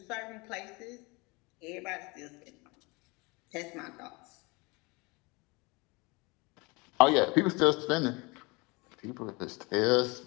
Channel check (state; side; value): quieter; right; 26.7 dB